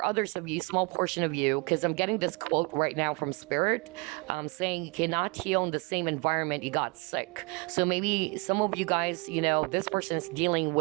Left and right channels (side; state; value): left; quieter; 30.6 dB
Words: others of you, small portion of you, because I'm getting this quote right now from Spirit, saying you cannot heal in the same environment you got sick. So maybe some of you guys, this person is dealing